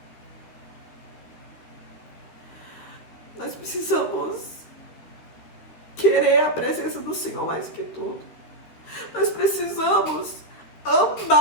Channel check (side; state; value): right; late; 13 ms